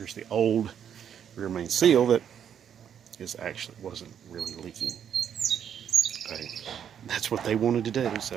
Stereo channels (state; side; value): quieter; left; 8.7 dB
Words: the old rear main seal that wasn't really leaking. Okay. That's what they wanted to do,